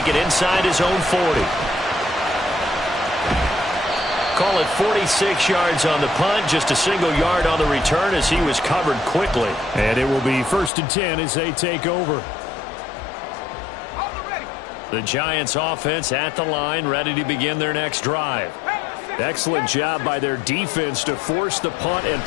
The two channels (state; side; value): drops out; right; at 10.7 s